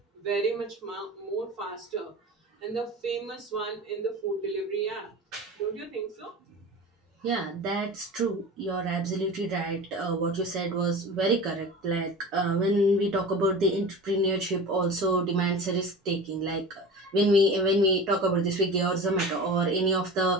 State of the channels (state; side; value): normal; both; correlation 0.34